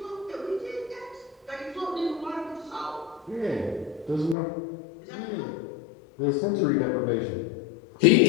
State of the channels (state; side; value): drops out; right; at 4.4 s